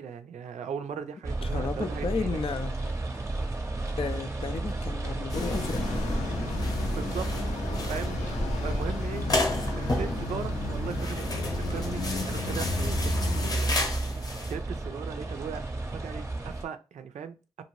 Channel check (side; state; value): both; normal; correlation 0.76